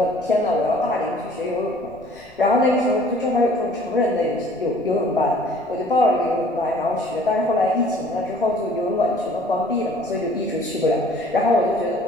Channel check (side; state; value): left; noise; rumble, 28 dB below the sound